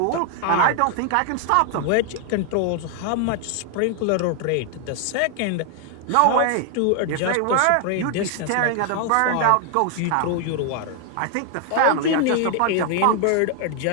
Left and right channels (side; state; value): both; different; correlation 0.00